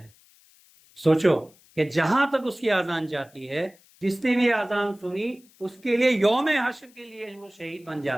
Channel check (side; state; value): left; noise; hiss, 29 dB below the sound